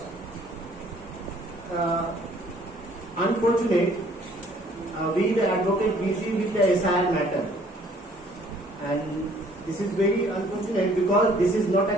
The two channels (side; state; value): both; normal; correlation 0.59